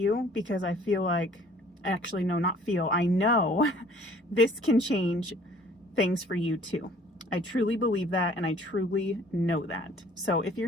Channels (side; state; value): both; normal; correlation 0.55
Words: because I feel like, actually, no, not feel, I know this can change things for you too. I truly believe that, and I truly know that. So if